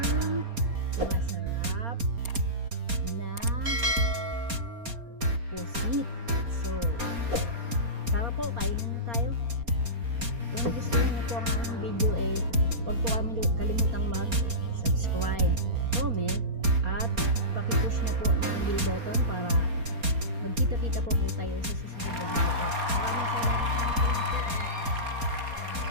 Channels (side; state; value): left; late; 4.3 ms